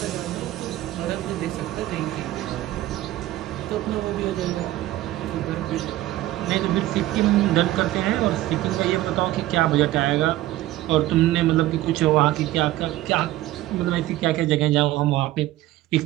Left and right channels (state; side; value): quieter; left; 15.7 dB